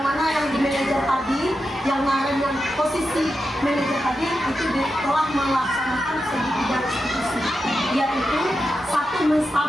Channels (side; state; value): both; normal; correlation 0.89